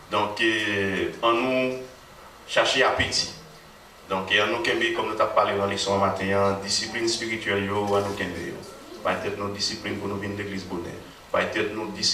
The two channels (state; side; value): identical; both; correlation 1.00